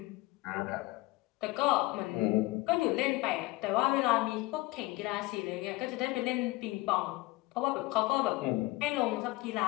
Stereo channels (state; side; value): quieter; right; 20.5 dB